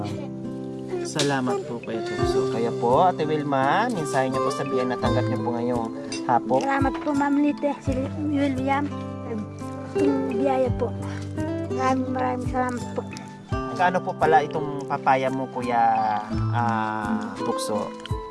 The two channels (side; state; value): both; identical; correlation 1.00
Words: Salamat po Kuya Tukso. Kaya po, Ate Wilma, mensahe niyo po sa biyan na tanggap niyo po ngayong hapon. Salamat po ma'am Lite, si William. Itong biyaya po. Maraming salamat po. Kaano po pala itong papaya mo, Kuya Tukso?